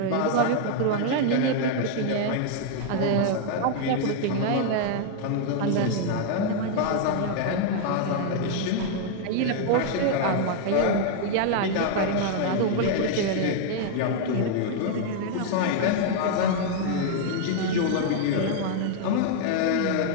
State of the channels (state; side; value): different; both; correlation 0.00